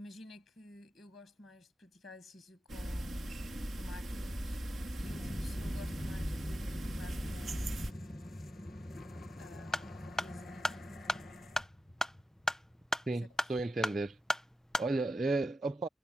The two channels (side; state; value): both; normal; correlation 0.90